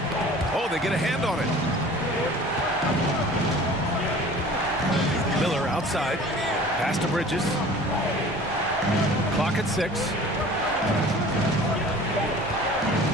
Oh, they get a hand on it. Miller outside. Pass to Bridges. Clock at 6.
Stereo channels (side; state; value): both; normal; correlation 0.45